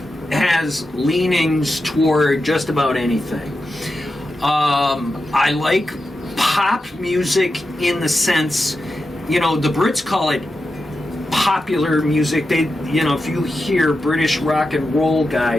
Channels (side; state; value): both; normal; correlation 0.90